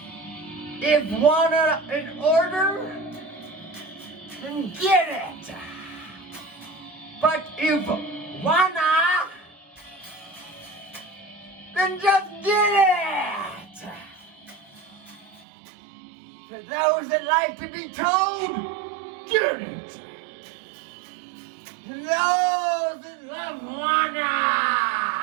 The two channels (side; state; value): left; drops out; at 15.5 s